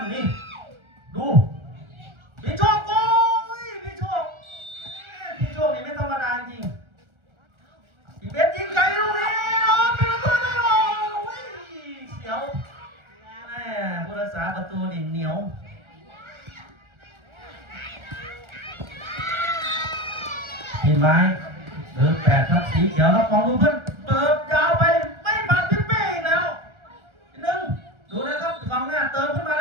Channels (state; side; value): late; left; 1.4 ms